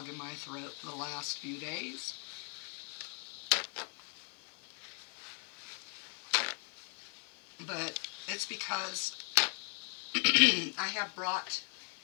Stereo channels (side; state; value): right; quieter; 38.1 dB